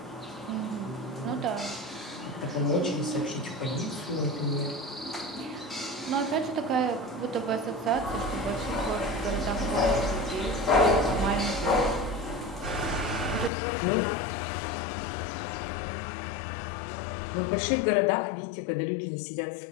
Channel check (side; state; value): right; drops out; at 13.5 s